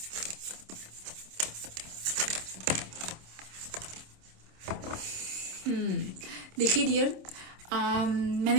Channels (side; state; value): left; late; 26 ms